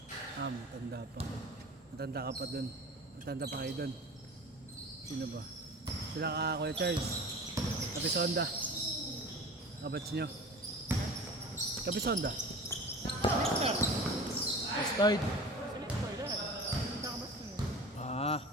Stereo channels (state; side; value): normal; both; correlation 0.37